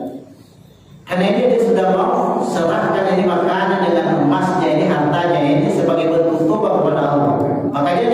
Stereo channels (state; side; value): identical; both; correlation 1.00